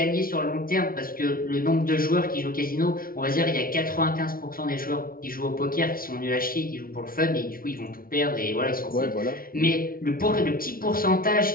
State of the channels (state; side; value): late; right; 0.42 ms